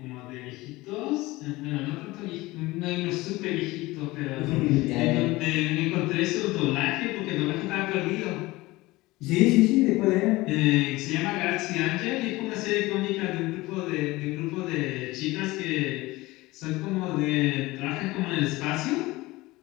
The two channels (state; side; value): quieter; right; 20.2 dB